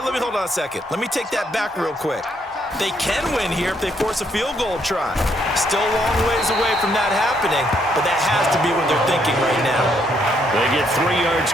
let me hold on a second. Let me take that back real quick. They can win here if they force a field goal try. Still a long ways away from that happening, but that has to be what they're thinking right now. They get 3 yards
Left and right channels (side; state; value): both; normal; correlation 0.72